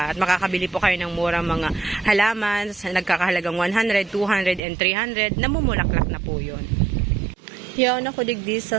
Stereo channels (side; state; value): left; drops out; at 4.6 s